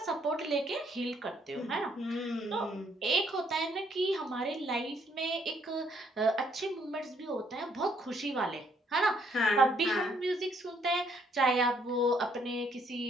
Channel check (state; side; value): normal; both; correlation 0.68